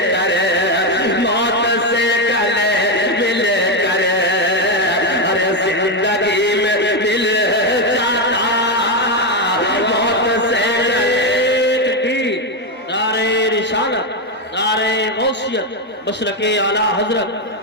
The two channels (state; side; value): normal; both; correlation 0.07